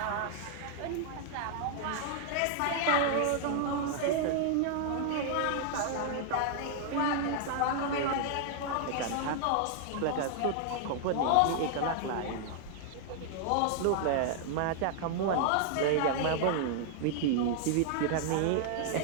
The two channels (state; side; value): different; both; correlation 0.00